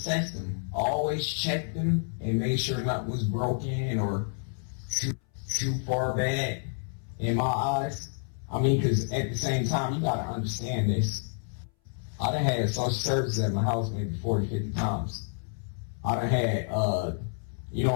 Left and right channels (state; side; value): silent; right; 59 dB below the other